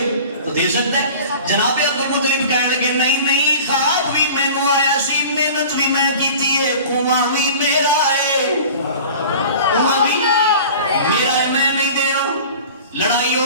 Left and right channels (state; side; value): inverted; both; correlation -0.41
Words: تو دے سکتا ہے۔ جناب عبد المطلب کہنے لگے نہیں نہیں خواب بھی مینوں آیا سی، محنت بھی میں کیتی ہے، کنواں بھی میرا ہے، کنواں بھی میرا ہے، میں نہیں دینا۔ لڑائی